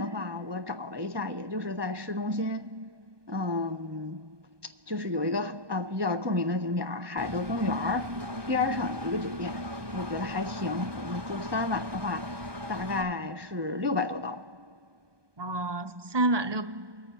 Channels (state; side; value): late; left; 1.2 ms